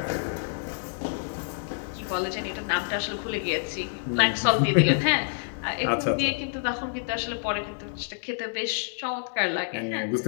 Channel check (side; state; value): right; silent; digital silence